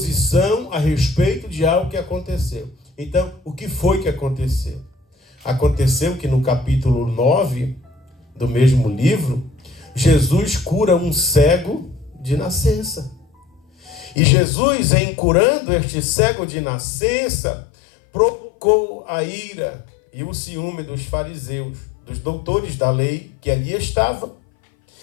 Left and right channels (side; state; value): right; drops out; at 14.2 s